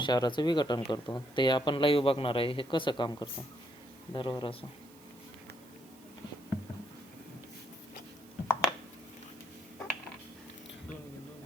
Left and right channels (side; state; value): right; noise; hiss, 24 dB below the sound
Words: विघटन करतो. ते आपण लाईव्ह बघणार आहे हे कसं काम करतं. बरोबर असं.